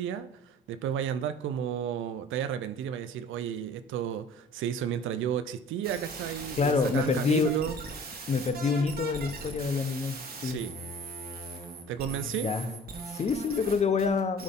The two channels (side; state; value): both; normal; correlation 0.46